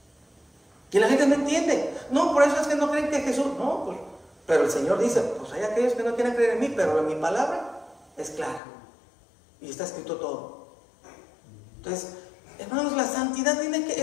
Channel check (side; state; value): right; drops out; at 8.6 s